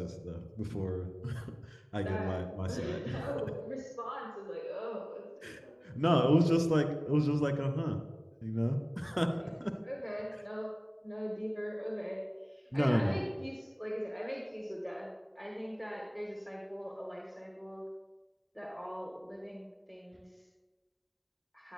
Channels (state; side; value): identical; both; correlation 1.00